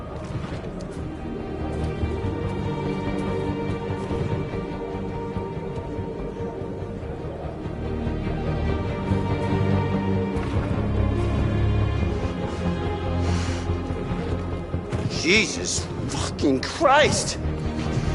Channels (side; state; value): both; identical; correlation 1.00